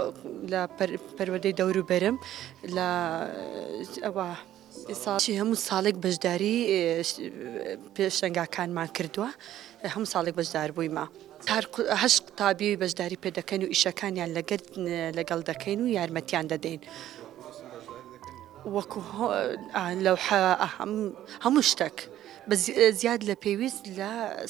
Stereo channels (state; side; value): quieter; left; 12.6 dB